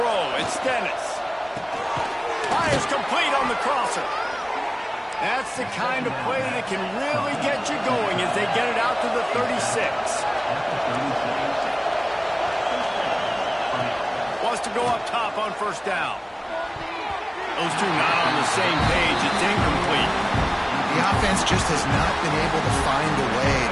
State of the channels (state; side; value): identical; both; correlation 1.00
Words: it's Dennis. Fires complete on the crosser. That's the kind of play that can really get you going as they get it out to the 36. Wants to go up top on first down. Those two not on the same page. It's incomplete. The offense just has not been able to find a way